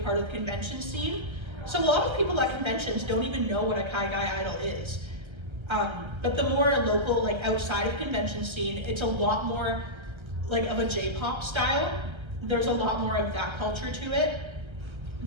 part of the convention scene. So a lot of people at conventions don't even know what a Kaigai idol is. But the more local, like outside of convention scene, it's a lot more like of a J-pop style. There's a lot more of that culture to it.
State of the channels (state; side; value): late; left; 1.3 ms